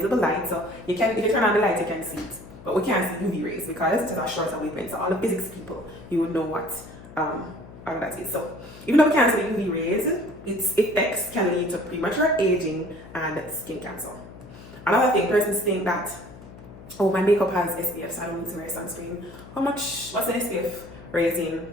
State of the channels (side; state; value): left; noise; hum, 17 dB below the sound